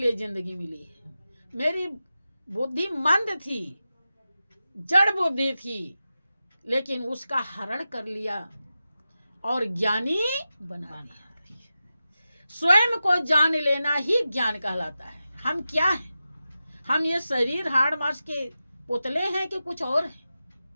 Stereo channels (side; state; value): both; inverted; correlation -0.93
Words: जिंदगी मिली है। मेरी बुद्धि मंद थी, जड़ बुद्धि थी, लेकिन उसका हरण कर लिया और ज्ञानी बना दिया। स्वयं को जान लेना ही ज्ञान कहलाता है। हम क्या हैं? हम ये शरीर हाड़ मांस के पुतले हैं कि कुछ और हैं?